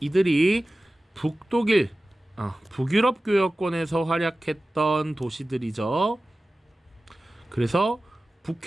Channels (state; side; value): normal; both; correlation 0.96